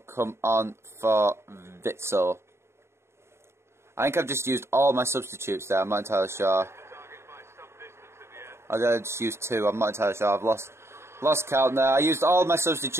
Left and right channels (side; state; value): left; late; 0.13 ms